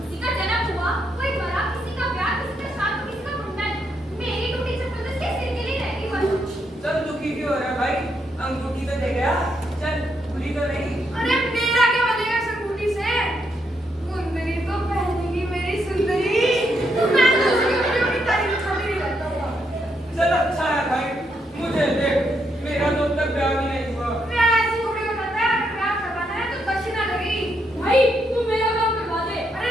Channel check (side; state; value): both; normal; correlation 0.78